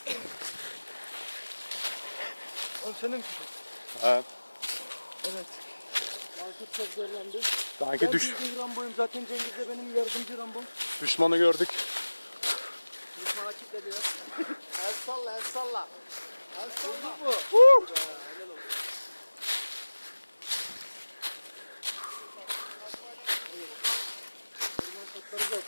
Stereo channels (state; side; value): inverted; both; correlation -1.00